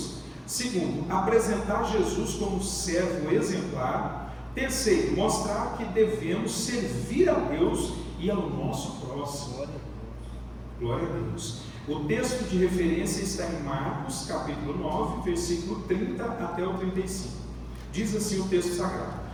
Segundo, apresentar Jesus como servo exemplar. Terceiro, mostrar que devemos servir a Deus e ao nosso próximo. Glória a Deus. O texto de referência está em Marcos, capítulo 9, versículo 30 até o 35. Diz assim o texto sagrado:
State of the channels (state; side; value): identical; both; correlation 1.00